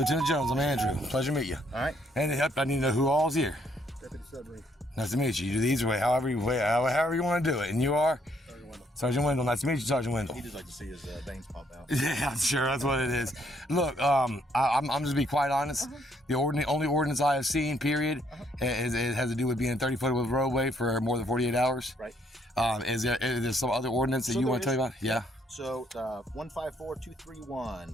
Jones, I'm Andrew. Pleasure to meet you. All right. And I need to know who all's here. Deputy Sudbury. Nice to meet you. You do these way, however you want to do it. And you are? Sergeant Wendell. Sergeant Wendell. Nice to meet you, Sergeant Wendell. He just like to see his veins pop out. Yeah, I'm sure that's what it is. Look, I'm just to be quite honest. The only ordinance I have seen, period, it has to do with being 30 foot of roadway for more than 48 hours. Right. Is there some other ordinance that you want to tell me about? Yeah. So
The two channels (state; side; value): normal; both; correlation 0.69